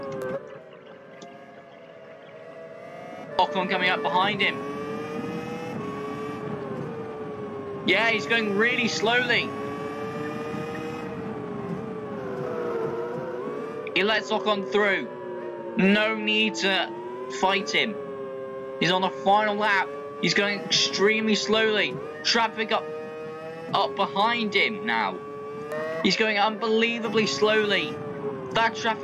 Ocon coming up behind him. Yeah, he's going really slowly. He lets Ocon through. No need to fight him. He's on the final lap. He's going extremely slowly. Traffic up behind him now. He's going unbelievably slowly. That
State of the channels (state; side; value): identical; both; correlation 1.00